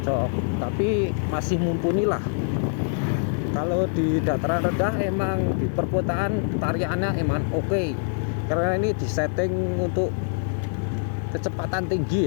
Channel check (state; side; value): silent; right; 62 dB below the other